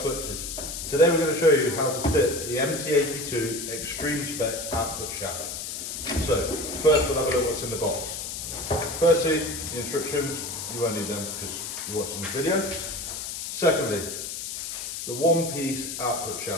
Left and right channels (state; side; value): noise; left; hiss, 6 dB below the sound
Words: Clutches. Today we're going to show you how to fit the MT82 Extreme Spec output shaft. So first we'll have a look what's in the box. Firstly, the instructions, you won't need them because you're watching this video. Secondly, the one-piece output